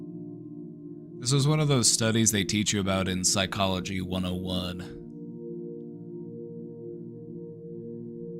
This was one of those studies they teach you about in Psychology 101.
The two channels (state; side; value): identical; both; correlation 1.00